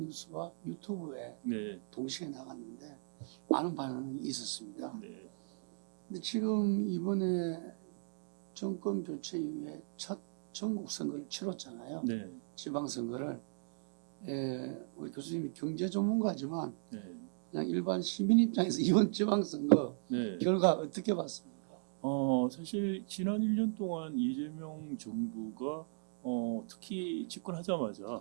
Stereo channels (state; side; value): silent; left; digital silence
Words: 유튜브에 네, 동시에 나갔는데 많은 반응이 있었습니다. 네, 근데 지금 이번에 정권 교체 이후에 첫 전국 선거를 치렀잖아요. 네, 지방선거를. 우리 교수님이 경제 전문가지만 네, 그냥 일반 시민 입장에서 이번 지방선거 네. 결과 어떻게 봤습니까? 사실 지난 1년 동안 이재명 정부가 특히